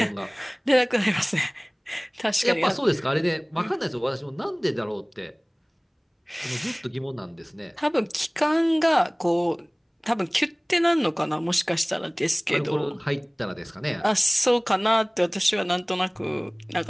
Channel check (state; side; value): identical; both; correlation 1.00